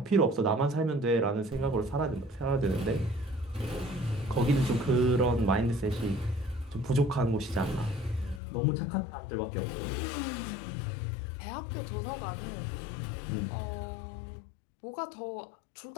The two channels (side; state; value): right; drops out; at 8.4 s